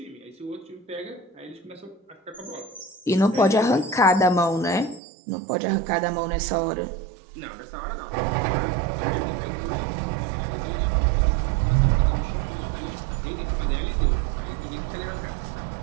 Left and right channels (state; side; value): drops out; left; at 5.0 s